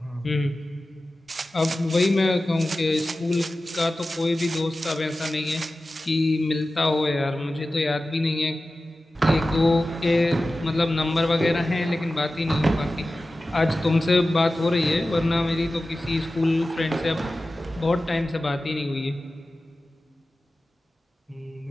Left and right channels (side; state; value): both; normal; correlation 0.95